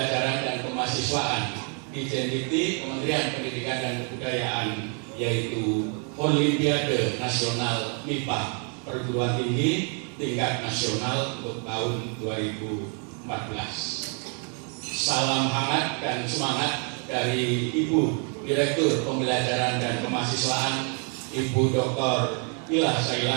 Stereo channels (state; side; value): quieter; left; 39.8 dB